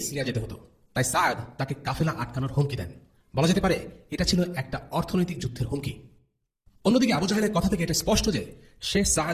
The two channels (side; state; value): both; identical; correlation 1.00